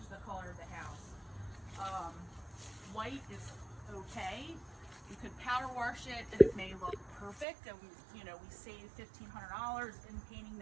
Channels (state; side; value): drops out; left; at 7.5 s